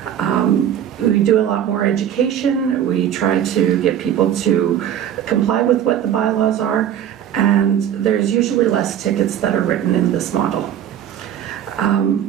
We do a lot more education. We try to get people to comply with what the bylaws are, and there's usually less tickets that are written in this model.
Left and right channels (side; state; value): left; quieter; 10.0 dB